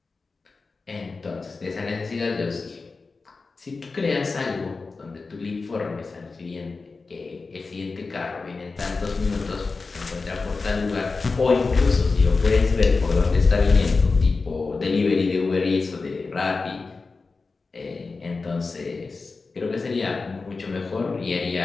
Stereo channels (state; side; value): quieter; right; 4.1 dB